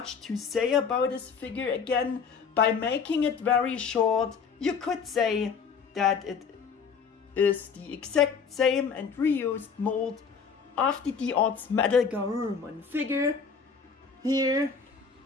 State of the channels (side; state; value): right; quieter; 6.0 dB